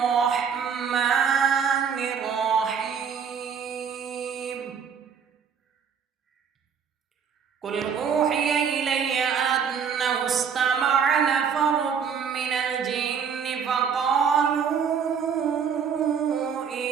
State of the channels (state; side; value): quieter; left; 6.9 dB